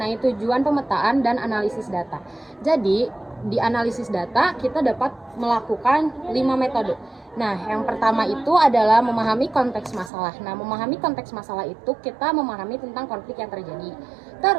tujuan pemetaan dan analisis data. Jadi, di analisis data kita dapat melakukan 5 metode. Nah, yang pertama itu adalah memahami konteks masalah. Nah, memahami konteks masalah itu kita memahami tentang konflik yang terjadi.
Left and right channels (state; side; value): drops out; left; at 10.1 s